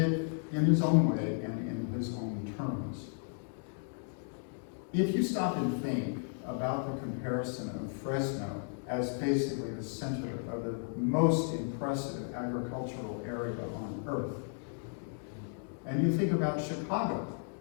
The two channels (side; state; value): right; silent; 55 dB below the other